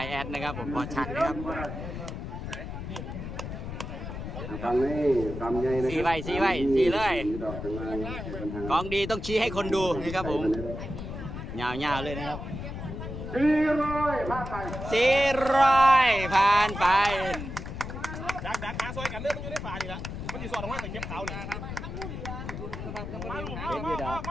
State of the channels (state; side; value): noise; left; rumble, 7 dB below the sound